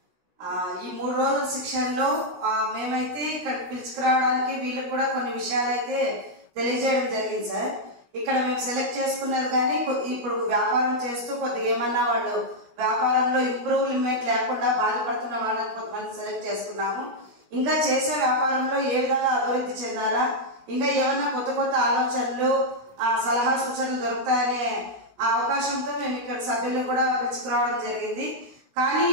ఈ 3 రోజుల శిక్షణలో మేమైతే ఇక్కడ పిలుచుకురావడానికి వీళ్ళకి కూడా కొన్ని విషయాలు అయితే తెలియజేయడం జరిగింది సార్. ఇక్కడ మేము సెలెక్ట్ చేసుకున్నారు కానీ ఇప్పుడు వ్యాపారం చేస్తూ కొద్దిగా ఏమన్నా వాళ్ళు వ్యాపారంలో ఇంప్రూవ్మెంట్ లేకుండా బాధపడుతున్న వాళ్ళని కొంతమంది సెలెక్ట్ చేసుకున్నాము. ఇంకా చేసే వ్యాపారంలో ఏ విధంగా అభివృద్ధి చెందాలా, ఇంకా ఏమన్నా కొత్త కొత్త ఆలోచనలు సలహా సూచనలు దొరుకుతాయనే అవకాశంతో మేము ఇక్కడ సభ్యులు కూడా పిలుచుకురావడం జరిగింది. కానీ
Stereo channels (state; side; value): late; left; 16 ms